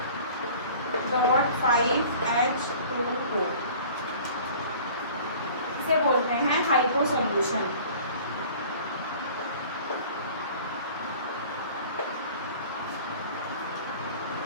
इसे बोलते हैं हाइपो सॉल्यूशन.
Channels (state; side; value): inverted; both; correlation -0.46